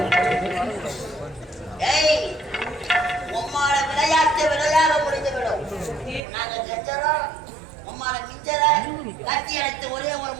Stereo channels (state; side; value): drops out; left; at 6.2 s